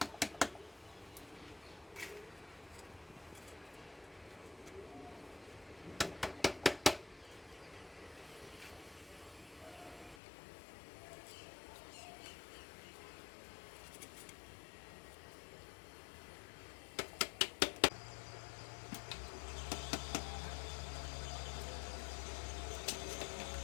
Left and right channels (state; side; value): drops out; right; at 10.2 s